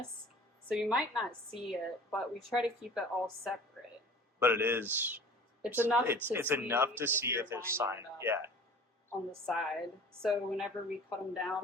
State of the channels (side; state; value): both; normal; correlation 0.44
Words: So you might not see it, but we try to keep it all separate. But it is. It's enough It's to enough to if see you're if it's lining signed. it up Yeah. on the side. So whenever we cut them